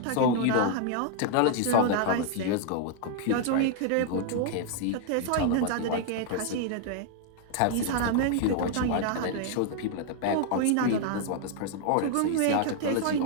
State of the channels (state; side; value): different; both; correlation 0.00